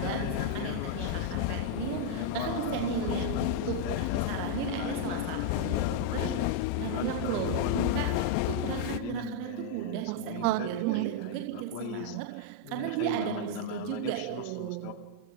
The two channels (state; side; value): different; both; correlation -0.01